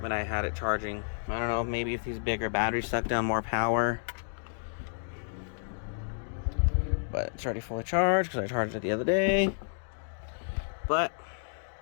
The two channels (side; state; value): right; silent; digital silence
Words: I had it charging. I don't know, maybe if these bigger batteries suck down more power. But it's already fully charged because I charged it the other day. But